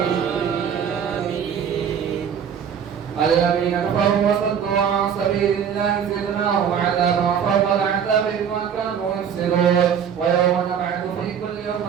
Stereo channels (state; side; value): quieter; left; 7.9 dB